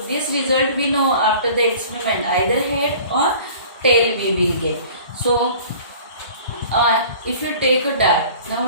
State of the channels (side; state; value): both; inverted; correlation -0.46